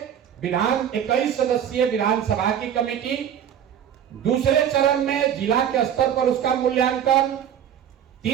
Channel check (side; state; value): left; quieter; 9.3 dB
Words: 21 सदस्यीय विधानसभा की कमेटी, दूसरे चरण में जिला के स्तर पर उसका मूल्यांकन,